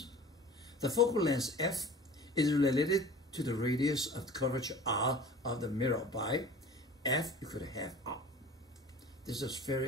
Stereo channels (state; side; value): normal; both; correlation 0.41